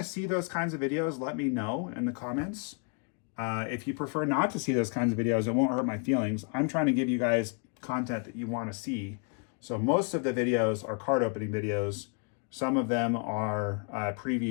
see those kinds of videos, let me know in the comments. If you prefer not to see those kinds of videos, it won't hurt my feelings. I'm trying to give you guys content that you want to see. So most of the videos are card opening videos. Some of them are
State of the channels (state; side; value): quieter; right; 37.5 dB